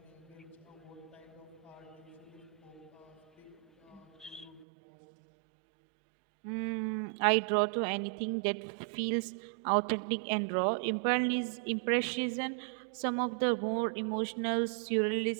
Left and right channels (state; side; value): drops out; left; at 4.7 s